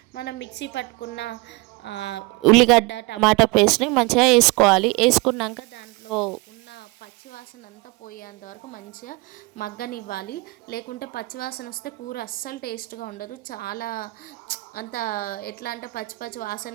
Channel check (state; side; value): quieter; left; 24.1 dB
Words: మనం మిక్సీ పట్టుకున్న ఉల్లిగడ్డ, టమాటా పేస్ట్ని మంచిగా వేసుకోవాలి. వేసుకున్నాక దాంట్లో ఉన్న పచ్చివాసన అంతా పోయేంత వరకు మంచిగా మగ్గనివ్వాలి. లేకుంటే పచ్చివాసన వస్తే కూర అస్సలు టేస్ట్గా ఉండదు. చాలా అంత ఎట్లా అంటే పచ్చి పచ్చి వాసన